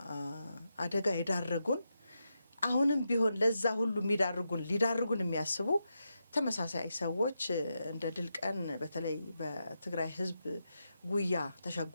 አደጋ ይዳረጉን አሁንም ቢሆን ለዛ ሁሉ ሊዳርጉን የሚያስቡ ተመሳሳይ ሰዎች እንደ ድል ቀን በተለይ በትግራይ ህዝብ ጉያ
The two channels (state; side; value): inverted; both; correlation -0.86